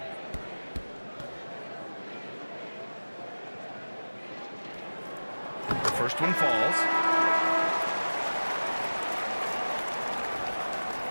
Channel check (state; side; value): inverted; both; correlation -1.00